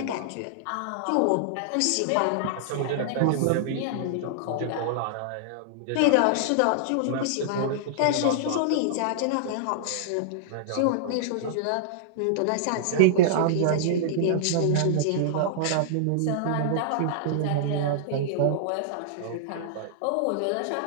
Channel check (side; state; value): both; different; correlation -0.01